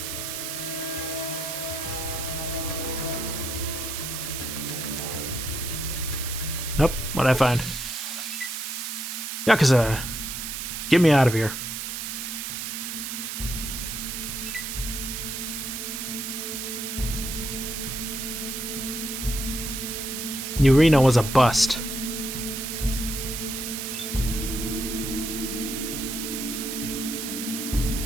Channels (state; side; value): noise; right; hiss, 5 dB below the sound